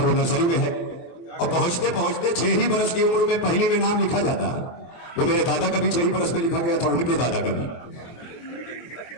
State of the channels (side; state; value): right; late; 24 ms